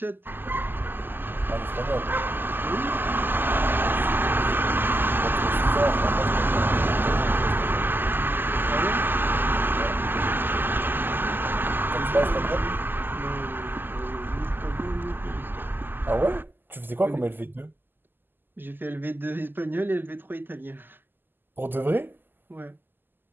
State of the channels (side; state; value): left; late; 0.094 ms